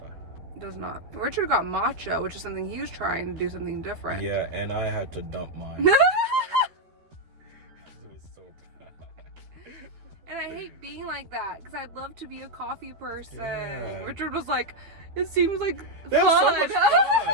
It does not. Richard got matcha, which is something he was trying to do something different. Yeah, and I had to dump mine. It was so bad. And I hate being like that because I'd love to be a coffee person. Yeah. Richard was like, it seems like That's fun. so much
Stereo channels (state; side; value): late; left; 12 ms